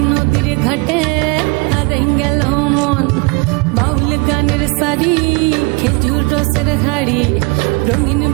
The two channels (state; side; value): quieter; left; 28.1 dB